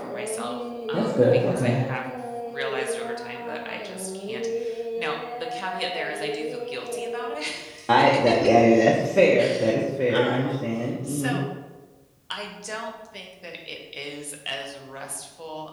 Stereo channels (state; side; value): identical; both; correlation 1.00